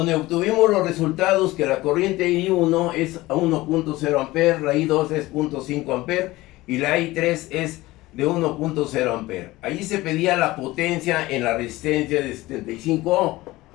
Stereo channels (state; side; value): quieter; right; 18.8 dB